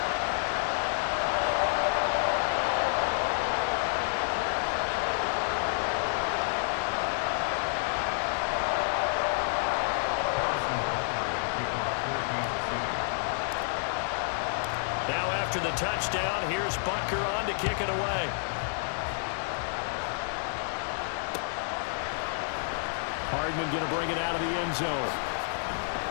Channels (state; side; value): silent; right; digital silence